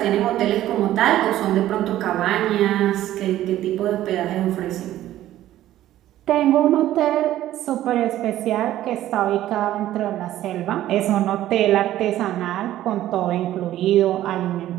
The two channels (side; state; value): left; quieter; 13.5 dB